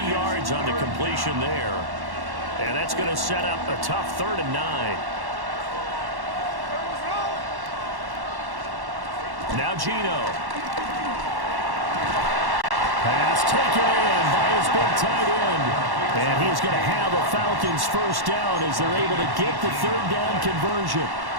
yards on the completion there. And that's going to set up a tough 3rd and 9. Now Gino. Pass taken in by his big tight end. And he's going to have a Falcons first down as they're able to get the 3rd down conversion.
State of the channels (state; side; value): late; left; 1.1 ms